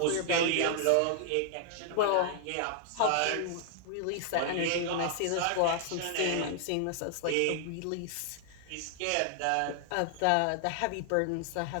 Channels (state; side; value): different; both; correlation 0.00